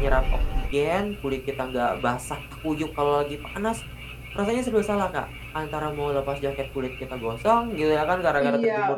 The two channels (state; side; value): identical; both; correlation 1.00